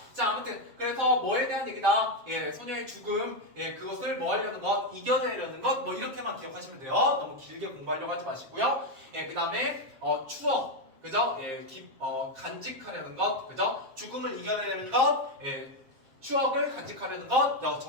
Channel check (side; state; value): left; late; 7.5 ms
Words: 자, 아무튼 그래서 뭐에 대한 얘기다. 소녀의 죽음, 그것을 뭐 하려는 것, 이겨내려는 것, 뭐 이렇게만 기억하시면 돼요. 너무 길게 공부하려고 하지 마시고요. 그 다음에 추억, 그죠? 간직하려는 것, 그죠? 죽음을 이겨내려는 것, 추억을 간직하려는 것